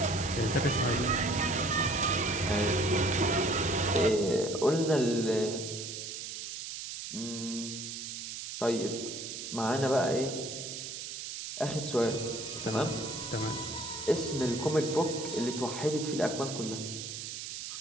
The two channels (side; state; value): right; noise; hiss, 7 dB below the sound